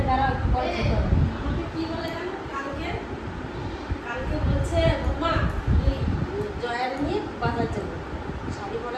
দাঁড়াও একটু পরে খেতে হবে। আমাকে কি বলে জানো কালকে বলছে মা জয়ার নিয়ে বাজার যাবো শাড়ি পরা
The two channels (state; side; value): identical; both; correlation 1.00